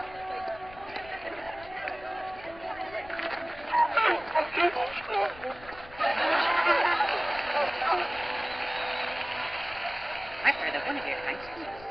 I've heard that one of your kind speaks.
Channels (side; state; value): left; noise; rumble, 20 dB below the sound